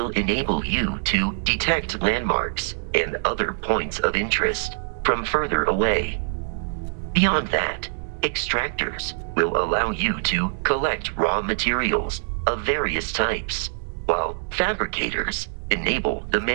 enable you to detect landmarks and other points of interest from further away. Beyond that, extractors will allow you to collect raw materials of various types, while fabricators enable the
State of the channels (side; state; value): left; silent; digital silence